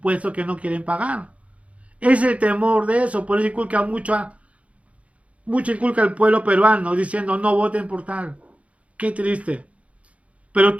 que no quieren pagar. Es el temor de eso, por eso inculca mucho al pueblo peruano diciendo no voten por tal. Qué triste. Pero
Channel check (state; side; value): late; left; 0.064 ms